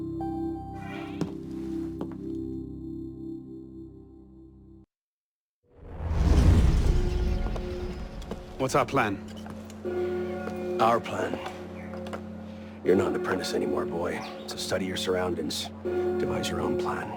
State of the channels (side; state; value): both; identical; correlation 1.00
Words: What's our plan? Our plan? You're not an apprentice anymore, boy. So study your surroundings. Devise your own plan.